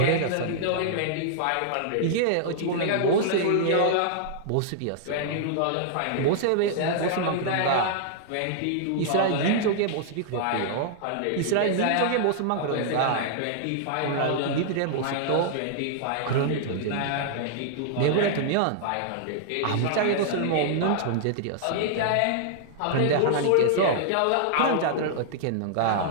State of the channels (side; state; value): both; different; correlation -0.01